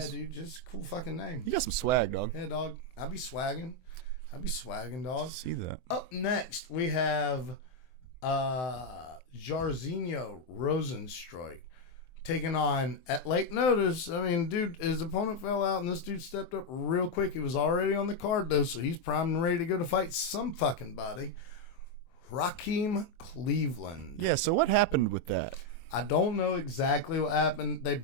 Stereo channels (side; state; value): right; late; 24 ms